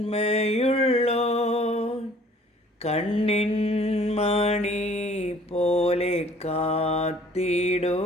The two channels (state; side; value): normal; both; correlation 0.55